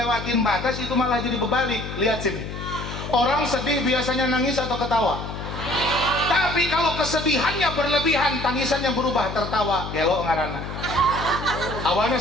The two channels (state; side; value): noise; left; hum, 8 dB below the sound